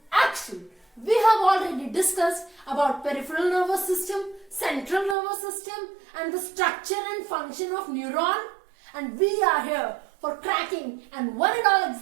action. We have already discussed about peripheral nervous system, central nervous system and the structure and function of neuron, and we are here for cracking and one and all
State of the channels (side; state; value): left; drops out; at 5.2 s